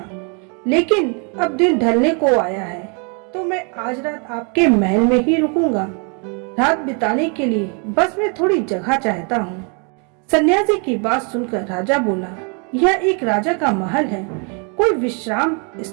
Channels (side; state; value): left; quieter; 36.7 dB